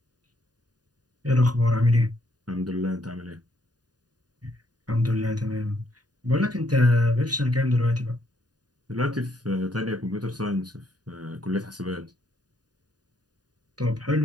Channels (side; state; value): left; late; 0.69 ms